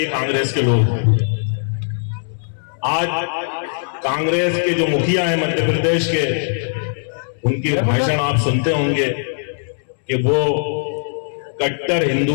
कांग्रेस के लोग। आज कांग्रेस के जो मुखिया हैं मध्य प्रदेश के, उनके भाषण आप सुनते होंगे कि वो कट्टर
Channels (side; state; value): right; silent; digital silence